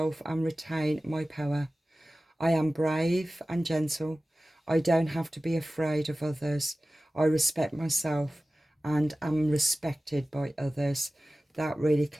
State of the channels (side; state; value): both; normal; correlation 0.96